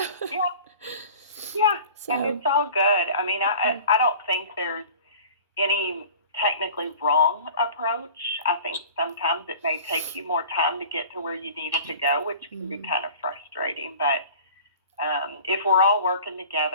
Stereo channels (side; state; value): both; inverted; correlation -0.43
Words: Yeah. Yeah. So. And it's all good. I mean, I don't think there's any technically wrong approach. I think sometimes it may take you more time to get to where you needed to go, which can be kind of frustrating. But if we're all working